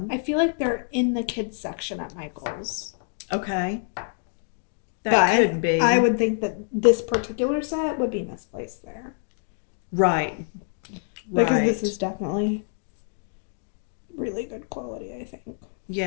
I feel like they're in the kids section at Michael's. Okay. That But could be. I would think that this particular set would be misplaced there. Right. Because Right. this is definitely really good quality, I think.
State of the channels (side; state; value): right; silent; digital silence